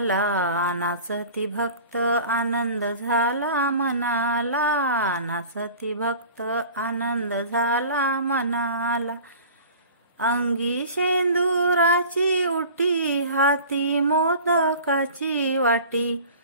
नाचती भक्त आनंद झाला मनाला, नाचती भक्त आनंद झाला मनाला। अंगी शेंदुराची उटी, हाती मोदकाची वाटी,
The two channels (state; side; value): inverted; both; correlation -0.41